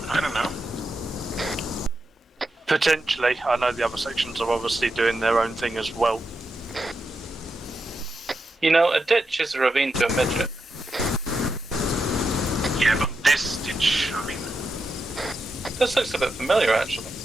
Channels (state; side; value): normal; both; correlation 0.86